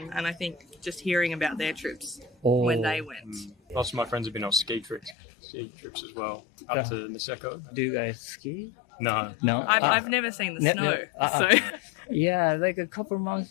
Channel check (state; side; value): drops out; right; at 5.2 s